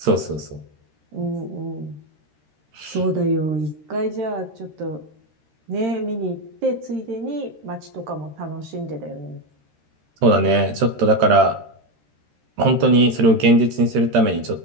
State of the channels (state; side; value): late; left; 13 ms